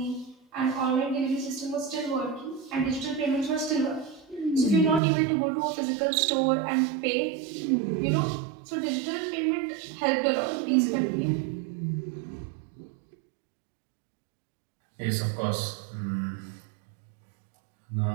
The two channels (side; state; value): left; drops out; at 5.0 s